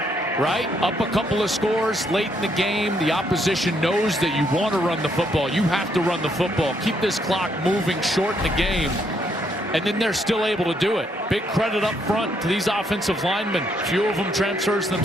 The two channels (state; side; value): normal; both; correlation 0.73